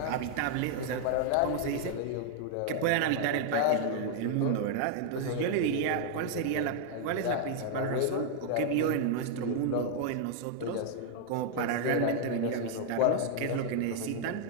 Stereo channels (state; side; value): different; both; correlation 0.00